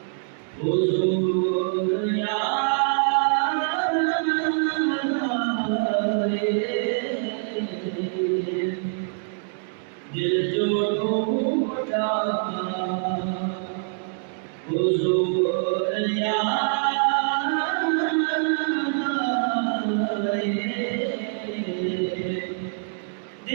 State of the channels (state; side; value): silent; left; digital silence